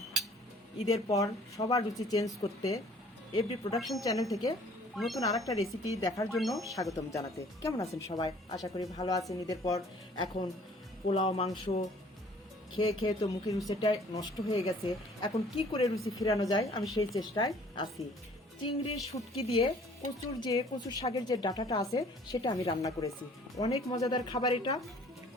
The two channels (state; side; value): normal; both; correlation 0.54